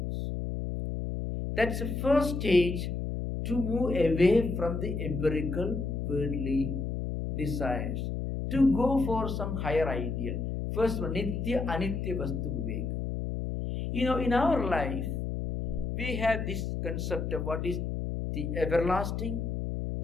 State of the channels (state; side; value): noise; left; hum, 3 dB below the sound